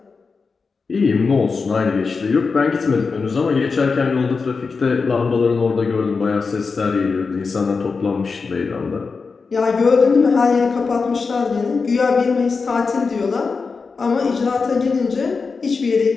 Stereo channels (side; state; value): right; quieter; 4.7 dB